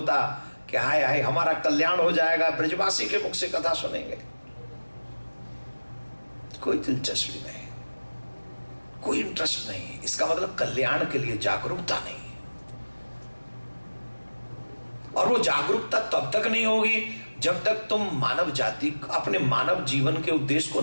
कि हाय हाय हमारा कल्याण हो जाएगा, ब्रजवासी के मुख से कथा सुनेंगे। कोई दिलचस्पी नहीं, कोई इंटरेस्ट नहीं। इसका मतलब कल्याण के लिए जागरूकता नहीं। और वो जागरूकता तब तक नहीं होगी जब तक तुम मानव जाति, अपने मानव जीवन के उद्देश्य को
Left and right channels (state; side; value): inverted; both; correlation -1.00